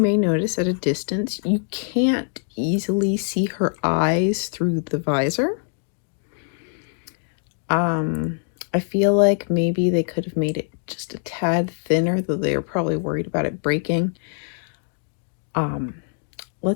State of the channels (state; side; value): silent; right; 61 dB below the other